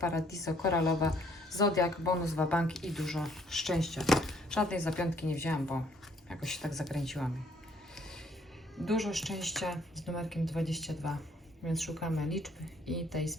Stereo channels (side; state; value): both; normal; correlation 0.64